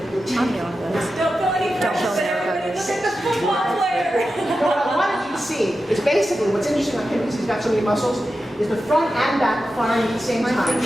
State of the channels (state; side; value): normal; both; correlation 0.91